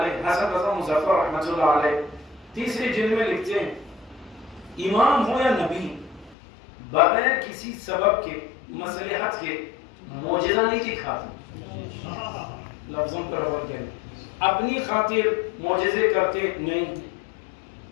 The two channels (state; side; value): drops out; right; at 6.4 s